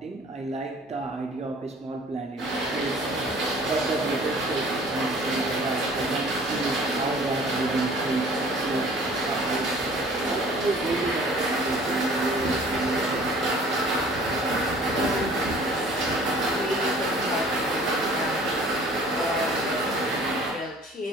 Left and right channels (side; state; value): both; normal; correlation 0.50